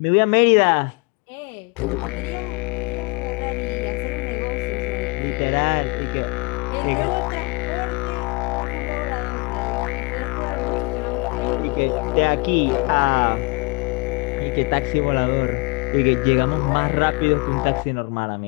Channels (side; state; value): right; quieter; 28.6 dB